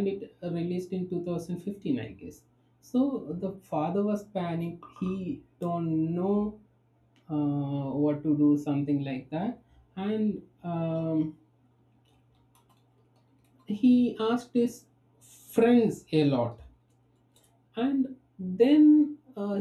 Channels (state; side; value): identical; both; correlation 1.00